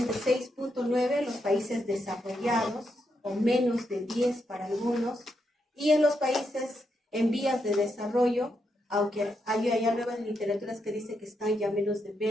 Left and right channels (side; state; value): both; normal; correlation 0.81